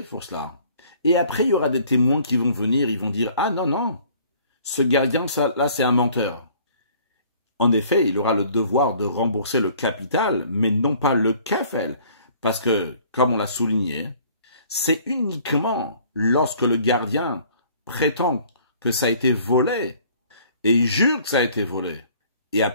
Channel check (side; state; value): both; inverted; correlation -0.55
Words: pour cela. Et après, il y aura des témoins qui vont venir, ils vont dire, ah non, non, ce gardien, là, c'est un menteur. En effet, il aura le devoir de rembourser le capital, mais non pas le kefel. Parce que, comme on l'a souligné, c'est uniquement lorsque le gardien prétend que ça a été volé, et il jure que ça a été volé, et